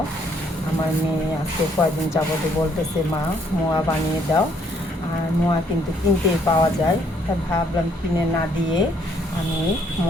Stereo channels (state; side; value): normal; both; correlation 0.67